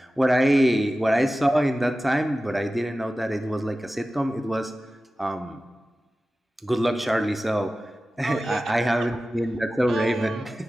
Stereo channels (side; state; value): both; normal; correlation 0.95